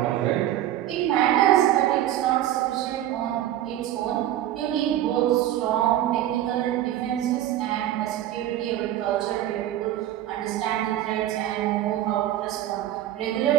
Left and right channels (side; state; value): left; quieter; 12.8 dB